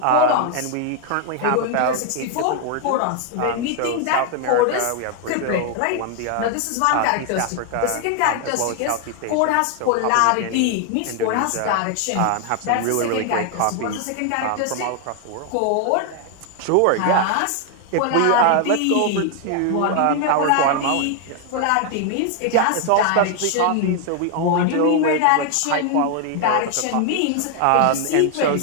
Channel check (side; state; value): both; different; correlation 0.00